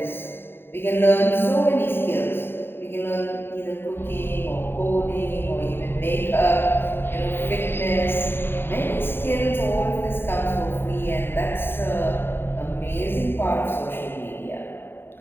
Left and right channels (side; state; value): right; late; 0.11 ms